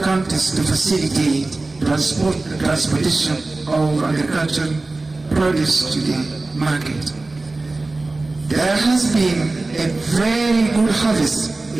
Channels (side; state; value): left; quieter; 3.2 dB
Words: to facilitate transportation of agricultural produce to the market. There has been a very good harvest